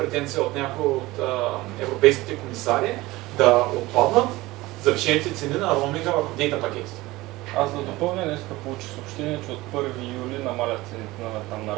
от някои от европейските комисари да отпаднат завишените цени на роуминга върху дейта пакетите. Аз да допълня, днеска получих съобщение, че от 1 юли намалят цените на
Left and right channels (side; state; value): left; quieter; 19.5 dB